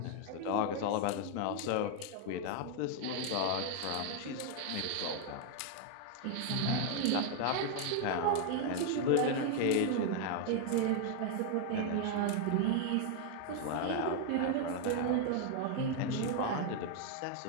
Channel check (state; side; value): different; both; correlation 0.00